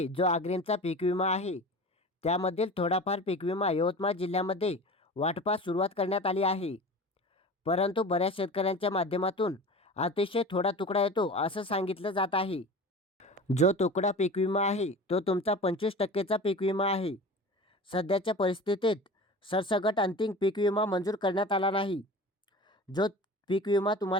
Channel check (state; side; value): normal; both; correlation 0.36